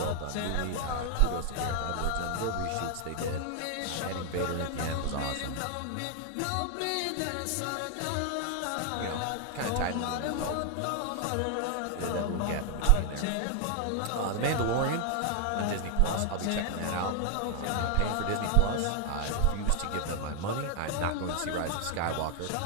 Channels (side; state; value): both; different; correlation 0.00